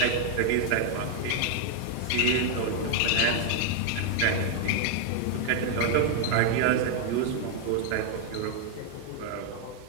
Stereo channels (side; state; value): both; different; correlation 0.00